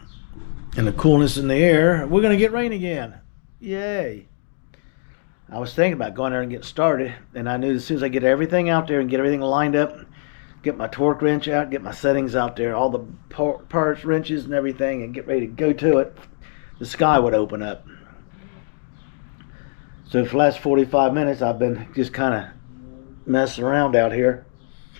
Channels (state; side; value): silent; right; digital silence